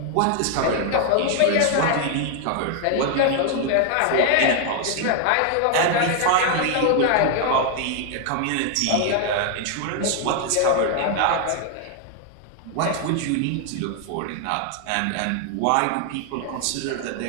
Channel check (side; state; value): both; different; correlation 0.00